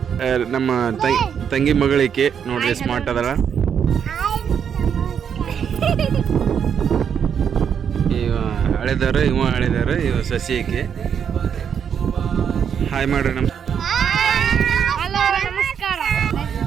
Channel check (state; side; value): quieter; left; 7.8 dB